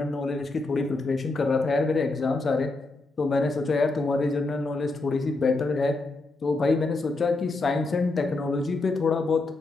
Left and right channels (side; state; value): right; quieter; 3.3 dB